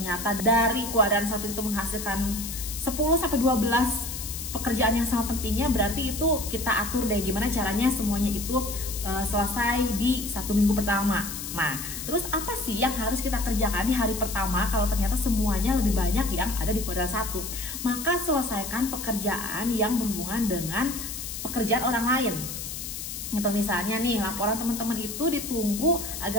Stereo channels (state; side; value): noise; left; hiss, 7 dB below the sound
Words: dari kuadran 1 itu menghasilkan 10-12 pekerjaan yang sama pentingnya, berarti itu kita atur deh gimana caranya semuanya itu selesai di 1 minggu pertama. Nah, terus apa sih yang harus kita kerjakan di hari pertama kalau ternyata semuanya lebih banyak yang ada di kuadran 1? Maka selesaikan pekerjaan yang berhubungan dengan pekerjaan orang lain. Gitu, misalnya nih laporan teman-teman itu ditunggu